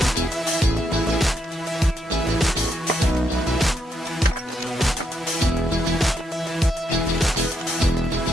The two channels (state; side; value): normal; both; correlation 0.79